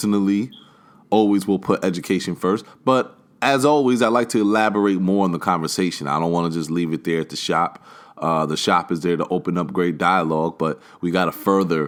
always will put education first. But as always, I like to elaborate more on the conversation. I don't want to just leave it there at the shop. The shop is there to open up great dialogue, but we got to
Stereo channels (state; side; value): identical; both; correlation 1.00